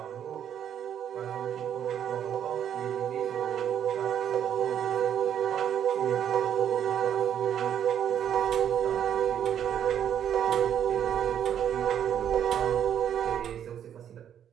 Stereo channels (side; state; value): left; quieter; 9.4 dB